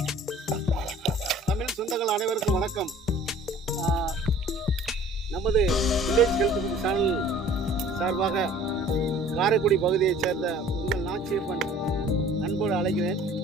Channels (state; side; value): normal; both; correlation 0.50